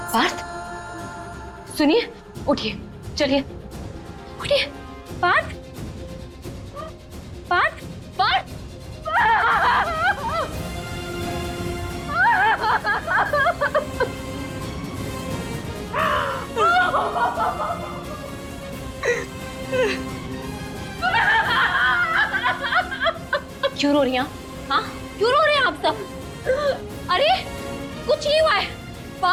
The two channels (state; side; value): identical; both; correlation 1.00